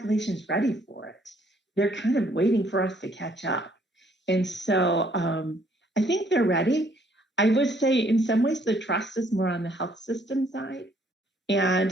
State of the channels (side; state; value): both; normal; correlation 0.65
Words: is ready for it. They're kind of waiting for us to catch up. And so I think they're ready. I would say in some ways the trust is more on the health system side. And